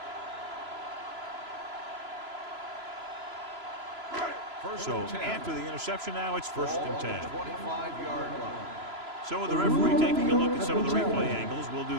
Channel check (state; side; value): late; left; 3.0 ms